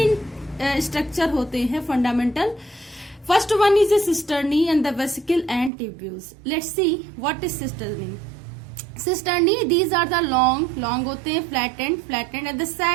स्ट्रक्चर होते हैं fundamental. First one is a cisternae and the vesicle and tubules. Let's see what is cisternae. Cisternae, these are the long होते हैं, flattened and the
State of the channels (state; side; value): drops out; left; at 5.7 s